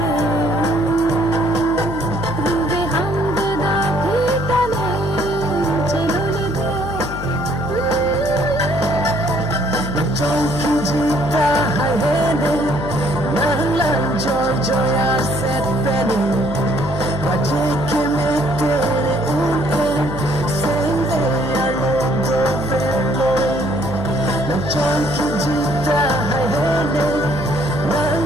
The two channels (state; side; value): noise; left; hum, 8 dB below the sound